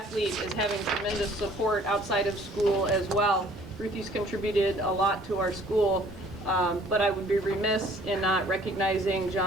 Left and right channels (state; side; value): normal; both; correlation 0.56